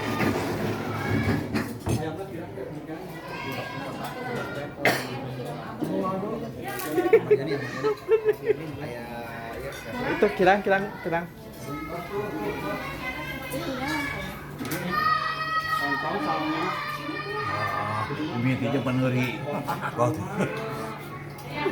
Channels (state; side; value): identical; both; correlation 1.00